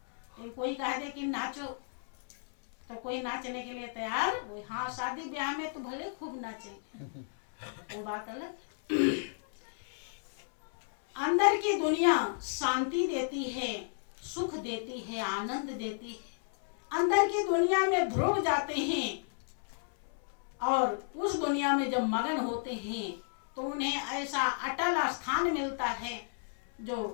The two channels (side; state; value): right; silent; 56 dB below the other